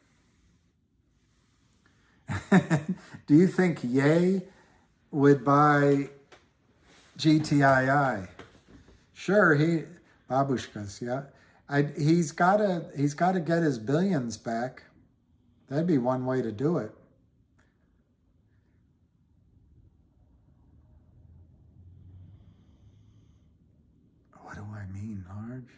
Do you think Ye would buy GTII? Sure, babushkas, yeah. He's got to get his billions back. That'd be one way to do it. What do I mean, large?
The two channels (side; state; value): both; identical; correlation 1.00